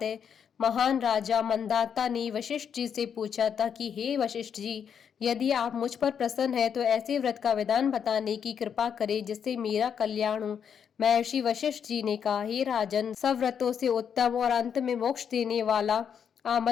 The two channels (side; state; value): right; quieter; 7.7 dB